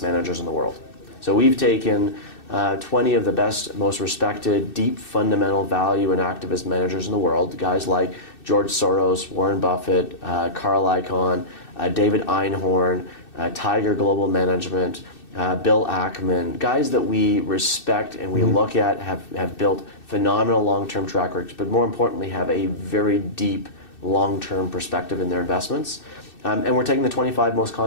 managers in the world. So we've taken 20 of the best, most respected, deep fundamental value and activist managers in the world, guys like George Soros, Warren Buffett, Carl Icahn, David Einhorn, Tiger Global Management, Bill Ackman, guys that we respect and we look at have built phenomenal long-term track records, but more importantly have a very deep long-term perspective in their investments. And we're taking the 25 most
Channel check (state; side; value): late; right; 2.6 ms